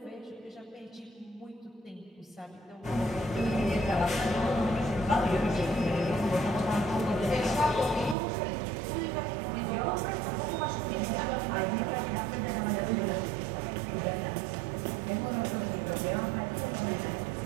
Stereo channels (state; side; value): drops out; left; at 8.2 s